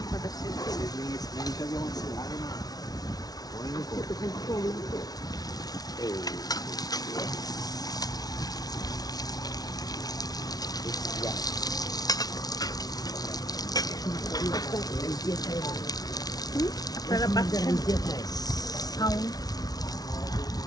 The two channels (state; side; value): late; right; 0.19 ms